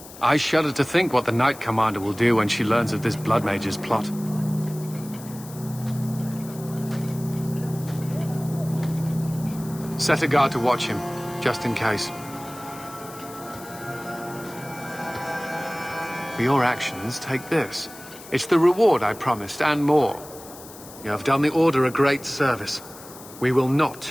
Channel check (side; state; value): left; noise; hiss, 17 dB below the sound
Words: I shudder to think what the Knight Commander will do when she learns of this Blood Mage's plot. Set a guard to watch him, just in case. For your actions, take this. It's the reward I promised, and more. You have done the Order a great service. We will